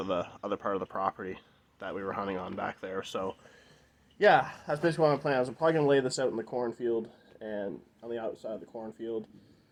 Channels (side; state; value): both; identical; correlation 1.00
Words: the other part of the property that we were hunting on back there. So yeah, that's basically what I'm planning. I was probably going to lay this out in the cornfield and on the outside of the cornfield.